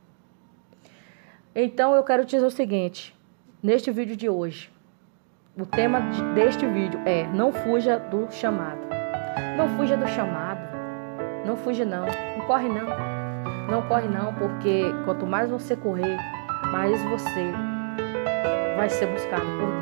Então eu quero te dizer o seguinte, neste vídeo de hoje, o tema deste vídeo é: não fuja do chamado. Não fuja do chamado. Não fuja não. Não corre não. Não corre não, porque quanto mais você correr, mais você vai ser buscado por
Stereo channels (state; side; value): silent; left; digital silence